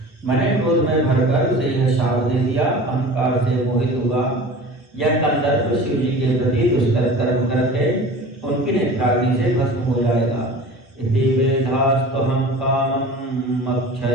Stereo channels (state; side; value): normal; both; correlation 0.38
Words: मैंने क्रोध में भरकर उसे यह शाप दे दिया, अहंकार से मोहित हुआ। यह कंदर्प शिव जी के प्रति दुष्कर कर्म करके उनकी नेत्राग्नि से भस्म हो जाएगा। इति वेदास्तुहं कामं